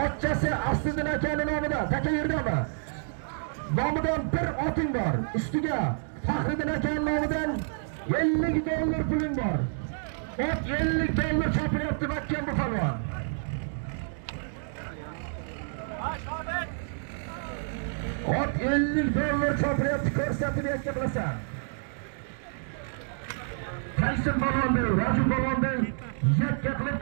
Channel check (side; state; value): left; silent; digital silence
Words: Asliddin akaning nomidan, taka yerdami? Nomidan bir oting bor. Ustiga Faxriddin akaning nomidan $50 puling bor. Ot $50 chopilyapti Makkan bu polvon. Ot $50 chopilyapti, ko'rsatib yakka qilasan. Tyson polvonda, Raju polvonda yakka qilib